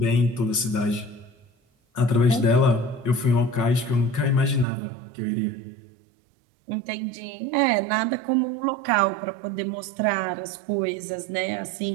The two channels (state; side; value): drops out; left; at 4.7 s